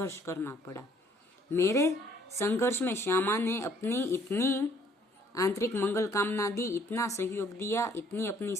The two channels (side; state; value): both; normal; correlation 0.62